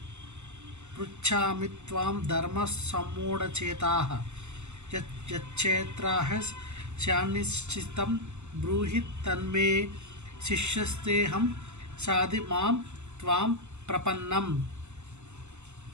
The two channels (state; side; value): late; left; 0.83 ms